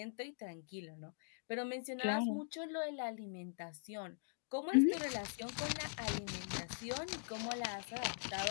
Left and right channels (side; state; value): right; silent; digital silence